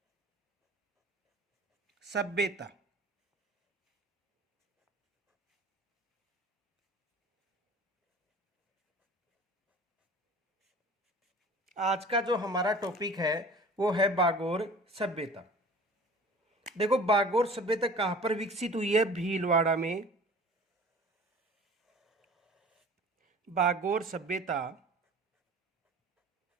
सभ्यता। आज का जो हमारा टॉपिक है वो है बागोर सभ्यता। देखो, बागोर सभ्यता कहाँ पर विकसित हुई है? भीलवाड़ा में। बागोर सभ्यता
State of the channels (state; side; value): normal; both; correlation 0.44